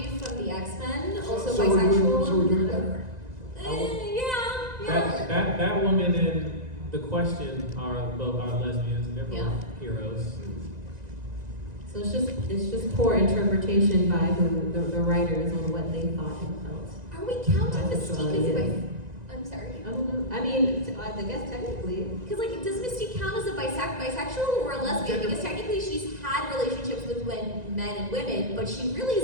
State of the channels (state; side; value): late; left; 1.9 ms